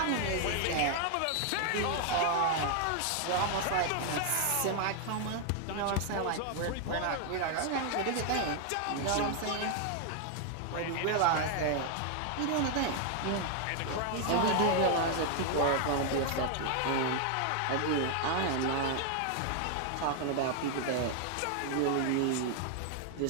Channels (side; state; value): both; different; correlation 0.00